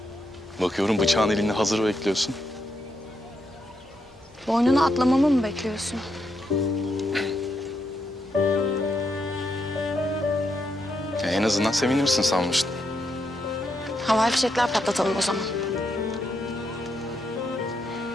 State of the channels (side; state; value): both; normal; correlation 0.80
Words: bakıyorum bıçağın elinde hazır bekliyorsun. Boynunu atlamamı mı bekliyorsun? En azından sevinirsin sanmıştım. Havai fişekler patlatalım o zaman.